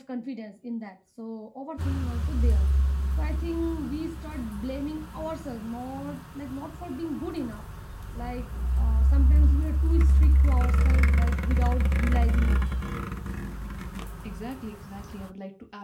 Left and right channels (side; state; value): both; identical; correlation 1.00